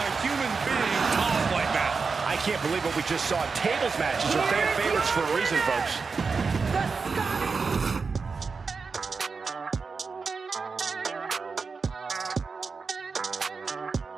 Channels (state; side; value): quieter; left; 4.8 dB